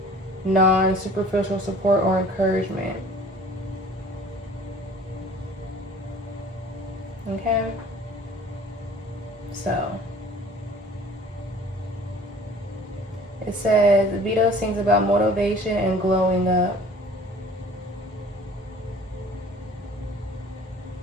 non-superficial support or encouragement. Okay, so it says Vito sings about motivation and glowing up.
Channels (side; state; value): both; normal; correlation 0.49